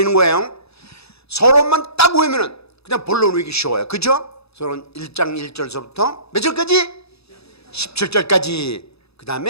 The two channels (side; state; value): right; late; 0.78 ms